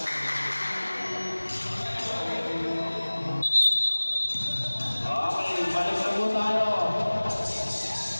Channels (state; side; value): inverted; both; correlation -1.00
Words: Okay, balik na po tayo.